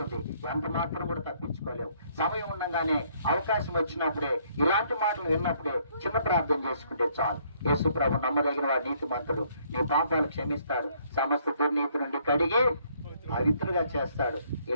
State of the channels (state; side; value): inverted; both; correlation -0.66